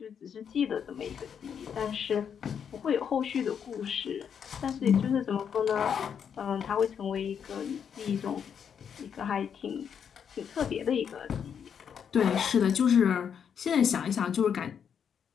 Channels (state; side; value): quieter; right; 7.6 dB